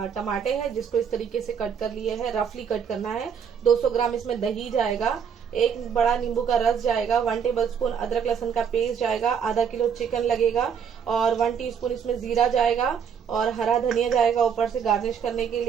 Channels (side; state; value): left; quieter; 7.3 dB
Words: टमाटे हैं जिसको इस तरीके से कट कर लिए हैं। रफली कट करना है। 200 ग्राम इसमें दही जाएगा। 1 बड़ा नींबू का रस जाएगा। 1 टेबलस्पून अदरक लहसुन का पेस्ट जाएगा। आधा किलो चिकन लगेगा और 1 टीस्पून इसमें जीरा जाएगा और हरा धनिया जाएगा ऊपर से गार्निश करने के